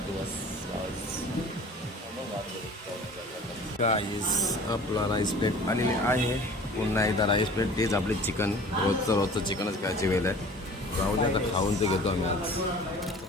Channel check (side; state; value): both; normal; correlation 0.44